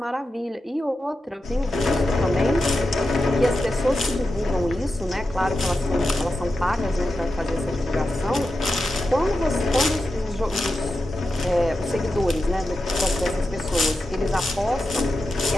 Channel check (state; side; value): normal; both; correlation 0.90